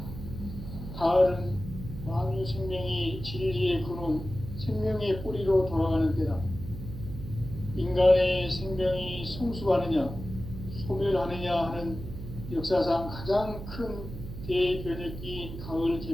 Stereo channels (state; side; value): noise; right; hum, 10 dB below the sound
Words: 가을은 만유 생명이 진리의 근원, 생명의 뿌리로 돌아가는 때다. 인간의 생명이 성숙하느냐, 소멸하느냐 하는 역사상 가장 큰 대변혁기인 가을